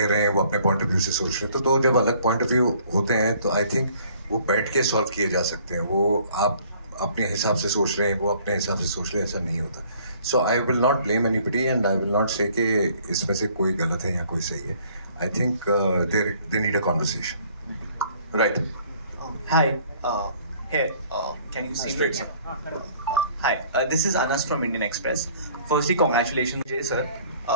रहे हैं वो अपने पॉइंट ऑफ व्यू से सोच रहे हैं, तो दो जब अलग पॉइंट ऑफ व्यू होते हैं तो आई थिंक वो बैठ के सॉल्व किए जा सकते हैं। वो आप अपने हिसाब से सोच रहे हैं, वो अपने हिसाब से सोच रहे हैं, ऐसा नहीं होता। So I will not blame anybody, and I will not say कि इसमें से कोई गलत है या कोई सही है। I think they need a conversation. Right. Hi, here, can you see me? Hi, this is Anas from Indian Express. Firstly, congratulations, Jay sir.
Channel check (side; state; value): both; inverted; correlation -0.57